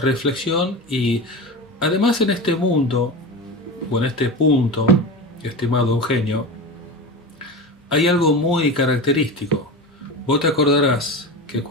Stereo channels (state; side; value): normal; both; correlation 0.26